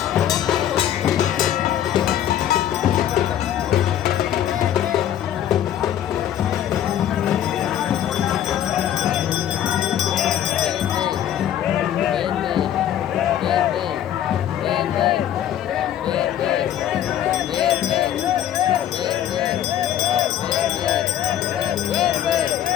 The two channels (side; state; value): right; quieter; 10.9 dB